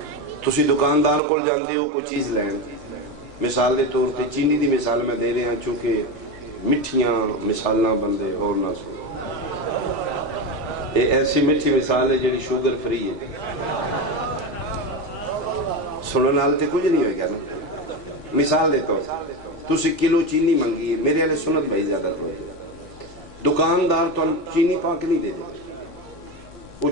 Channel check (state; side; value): normal; both; correlation 0.18